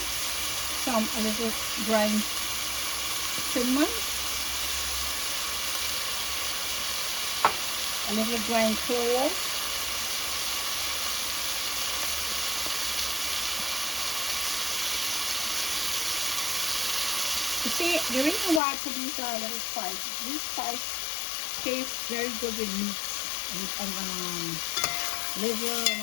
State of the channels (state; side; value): drops out; right; at 18.6 s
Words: Some a little ground cinnamon. A little ground clove. You see, the reason why I put these little spices, these spices taste very good with meat and liver and